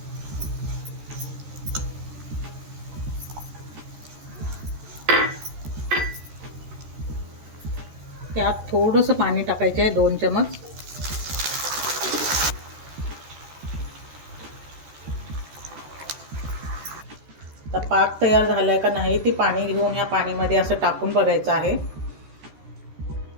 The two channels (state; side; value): late; left; 14 ms